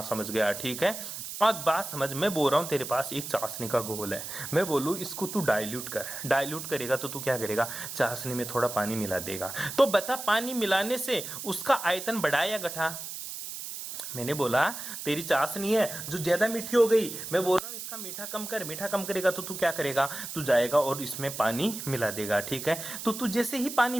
समझ गया। ठीक है, अब बात समझ। मैं बोल रहा हूं तेरे पास एक चाशनी का घोल है, मैं बोलूं इसको तू डाइल्यूट कर। डाइल्यूट करेगा तो तू क्या करेगा? चाशनी में थोड़ा पानी मिला देगा। तो बता, पानी मिलाने से उसका आयतन बढ़ा या घटा? मैंने बोला तेरी चाशनी है जो ज्यादा मीठी हो गई, मैं बोल रहा हूँ इसका मीठा कम कर। मीठा कम करेगा तो तू क्या करेगा? तू जाएगा और इसमें पानी मिला देगा। ठीक है, तो तू जैसे ही पानी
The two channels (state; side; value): noise; right; hiss, 8 dB below the sound